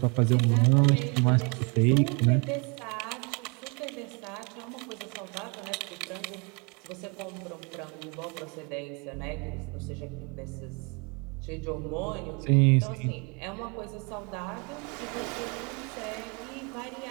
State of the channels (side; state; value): left; quieter; 33.4 dB